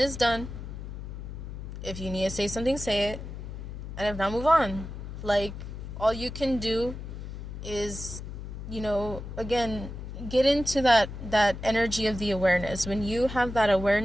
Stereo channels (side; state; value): left; noise; hum, 9 dB below the sound